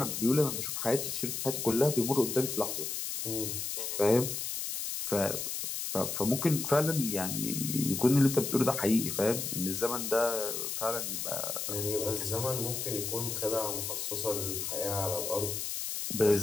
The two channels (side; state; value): left; noise; hiss, 3 dB below the sound